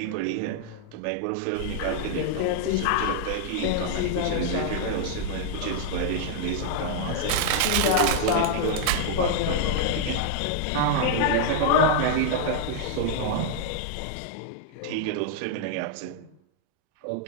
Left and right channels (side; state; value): both; different; correlation -0.01